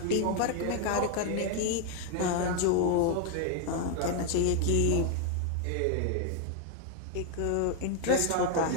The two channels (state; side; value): different; both; correlation 0.00